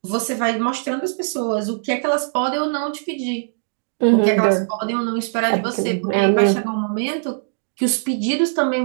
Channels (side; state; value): left; silent; digital silence